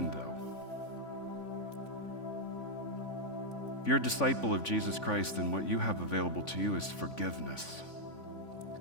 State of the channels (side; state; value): right; late; 3.5 ms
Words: though. If you're a disciple of Jesus Christ, then what you have available to you is forgiveness.